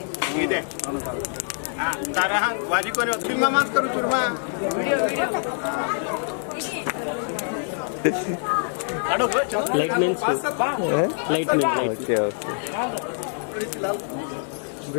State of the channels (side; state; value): right; silent; 62 dB below the other